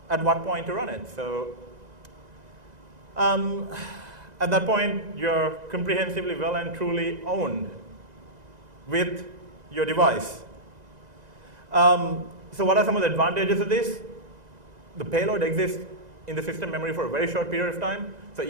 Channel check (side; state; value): left; late; 2.0 ms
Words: at what point to run it. So at that point, you're comprehensively well and truly owned with your device. So what are some of the advantages of this? The payload exists in the system memory for a very short period of time. So